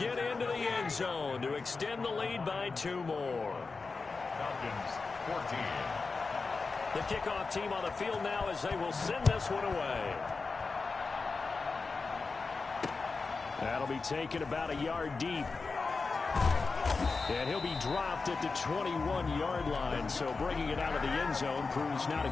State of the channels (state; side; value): quieter; right; 4.3 dB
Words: into the end zone to extend the lead by 2 more. Falcons 14. The kickoff team on the field now as they will send this one away. That'll be taken about a yard deep. And he'll be dropped at the 21-yard line. So bringing it out of the end zone proves not a